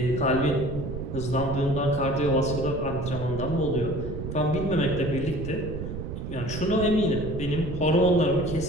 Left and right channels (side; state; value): right; noise; rumble, 7 dB below the sound